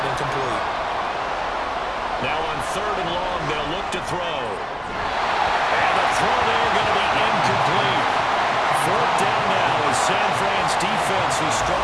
incomplete. Now on third and long, they'll look to throw. And the throw there going to be incomplete. Fourth down now as San Fran's defense is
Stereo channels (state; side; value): identical; both; correlation 1.00